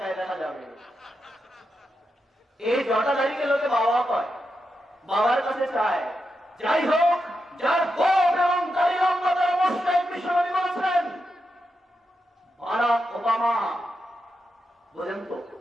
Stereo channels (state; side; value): normal; both; correlation 0.86